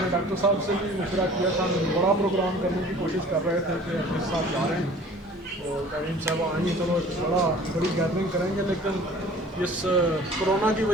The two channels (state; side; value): normal; both; correlation 0.47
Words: نے ڈاکٹر صاحب سے بھی مشورہ کیا تھا، ہم بڑا پروگرام کرنے کی کوشش کر رہے تھے کہ اپنے ساتھ جا رہے ہیں اور کریم صاحب آئیں گے، چلو بڑی گیدرنگ کریں گے، لیکن اس کرونا کی